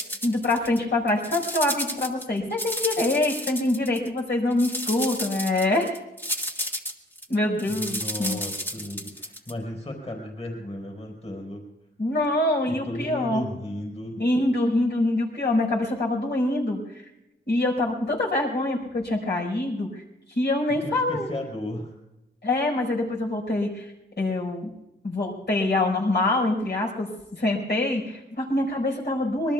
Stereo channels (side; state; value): both; normal; correlation 0.59